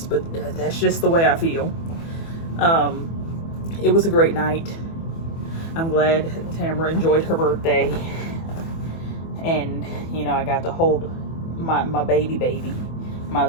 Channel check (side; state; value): right; late; 24 ms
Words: but that's just the way I feel. It was a great night. I'm glad Tamara enjoyed her birthday. And, you know, I got to hold my baby, my